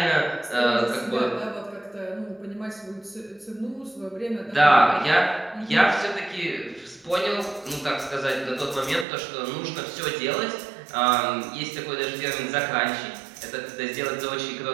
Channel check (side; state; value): left; drops out; at 9.1 s